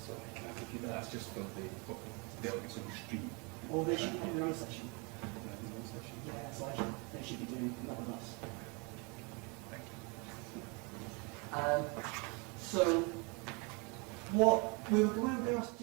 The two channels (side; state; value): left; quieter; 31.0 dB